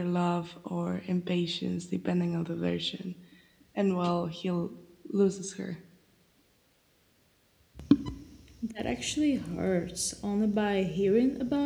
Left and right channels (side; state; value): both; identical; correlation 1.00